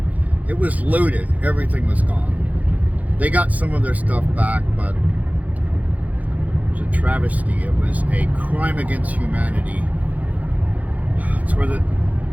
It was looted. Everything was gone. They got some of their stuff back, but it was a travesty. It was a crime against humanity. It's where the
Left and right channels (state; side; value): late; left; 0.075 ms